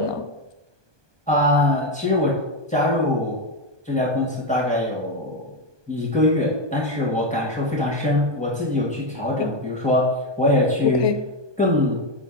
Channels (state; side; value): late; left; 1.2 ms